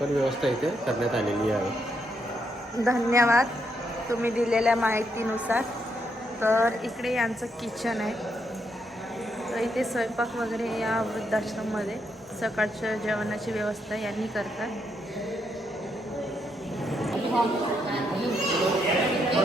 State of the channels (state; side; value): normal; both; correlation 0.78